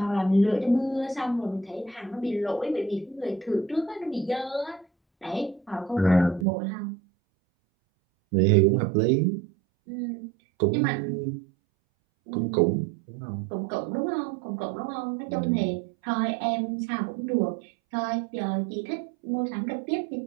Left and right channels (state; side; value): drops out; left; at 6.5 s